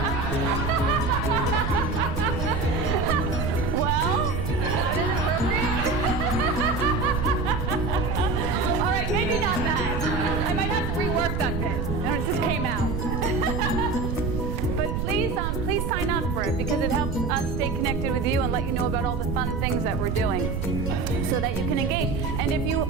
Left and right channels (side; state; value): right; noise; rumble, 1 dB below the sound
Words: Well, that is appropriate. All right, maybe not that. I might have to rework that bit. No, it just came out. But please sign up for it, because it helps us stay connected with you and let you know about all the fun things that we're doing, so that you can engage. And if you